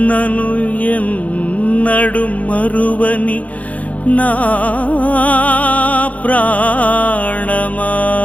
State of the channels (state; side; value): late; right; 0.069 ms